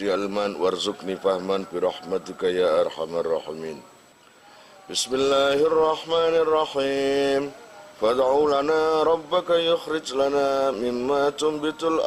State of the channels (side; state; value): both; identical; correlation 1.00